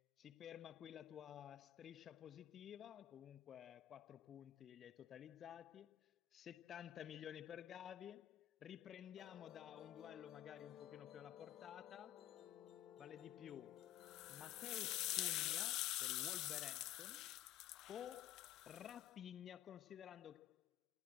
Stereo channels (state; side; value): quieter; right; 13.2 dB